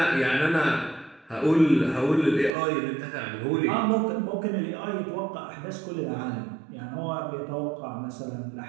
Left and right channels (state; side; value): drops out; left; at 2.5 s